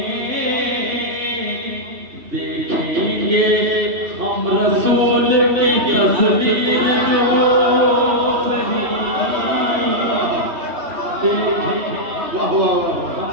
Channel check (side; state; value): left; late; 3.1 ms